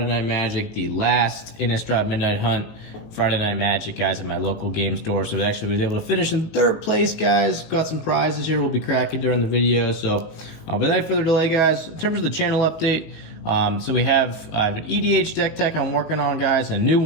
Night Magic, the last Innistrad Midnight Hunt Friday Night Magic, guys, at my local game store. So we actually was able to finish in third place, guys. Got some prizes here we'll be cracking during the video. So without further delay, guys, in terms of the channel update, so I have an EDH deck tech I'm working on, guys, a new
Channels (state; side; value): late; right; 18 ms